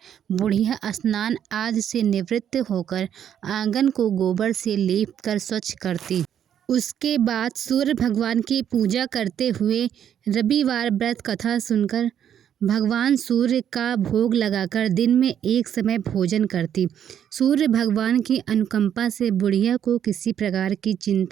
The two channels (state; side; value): quieter; left; 9.4 dB